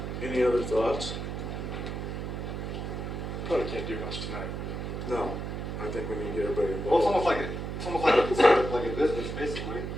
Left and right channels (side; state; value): right; noise; hum, 5 dB below the sound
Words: Any other thoughts? probably can't do much tonight. No, I think we need to get everybody Well, involved. it's almost like a business, basically.